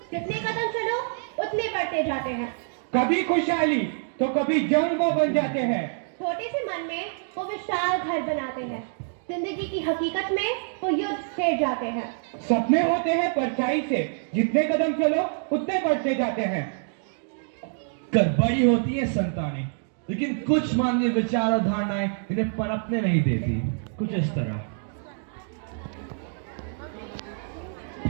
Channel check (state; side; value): silent; left; digital silence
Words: जितने कदम चलो उतने बढ़ते जाते हैं। कभी खुशहाली तो कभी जंग वो बन जाते हैं। छोटे से मन में वो विशाल घर बनाते हैं, जिंदगी की हकीकत में वो युद्ध छेड़ जाते हैं। सपने होते हैं परछाई से, जितने कदम चलो उतने बढ़ते जाते हैं। कर बड़ी होती है संतानें, लेकिन कुछ मानवीय विचार और धारणाएं इन्हें पनपने नहीं देती। कुछ इस तरह।